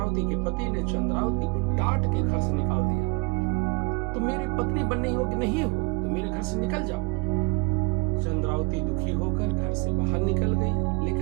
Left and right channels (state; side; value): quieter; left; 29.3 dB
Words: के पति ने चंद्रावती को डांट के घर से निकाल दिया। तुम मेरी पत्नी बनने योग्य नहीं हो, तो मेरे घर से निकल जाओ। चंद्रावती दुखी होकर घर से बाहर निकल गई,